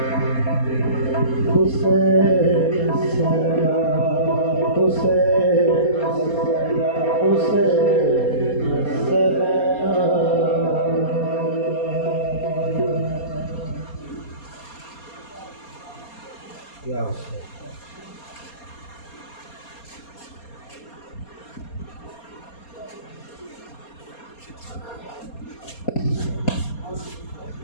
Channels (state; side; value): late; right; 4.2 ms